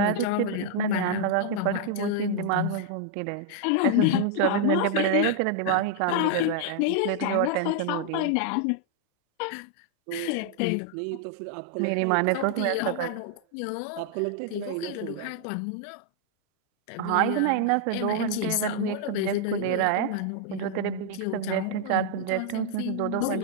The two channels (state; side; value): different; both; correlation 0.00